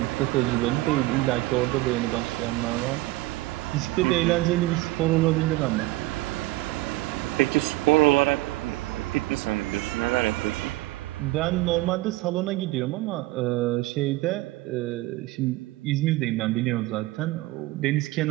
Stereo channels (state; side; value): quieter; left; 19.3 dB